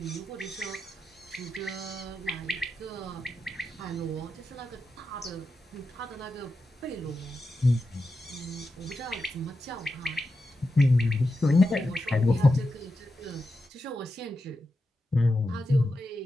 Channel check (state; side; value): normal; both; correlation 0.89